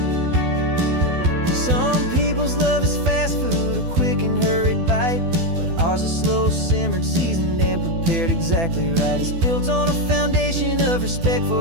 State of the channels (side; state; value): left; late; 12 ms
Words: Some people's love is fast food, a quick and hurried bite. Ours is slow simmered, seasoned, and prepared exactly right. It's built on a foundation of respect